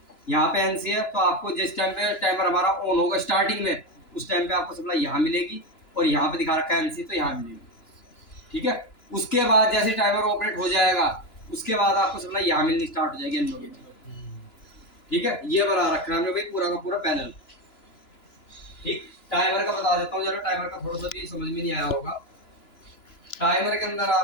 यहाँ पे NC है, तो आपको जिस टाइम पे टाइमर हमारा ऑन होगा स्टार्टिंग में, उस टाइम पे आपको सप्लाई यहाँ मिलेगी, और यहाँ पे दिखा रखा है NC, तो यहाँ मिलेगी। ठीक है, उसके बाद जैसे टाइमर ऑपरेट हो जाएगा, उसके बाद आपको सप्लाई यहाँ मिलनी स्टार्ट हो जाएगी NO की। ठीक है, ये बना रखना हमने भाई पूरा का पूरा पैनल। ठीक, टाइमर का बता देता हूँ जरा, टाइमर का थोड़ा सा भी समझ में नहीं आया होगा। टाइमर के अंदर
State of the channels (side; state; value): right; late; 2.9 ms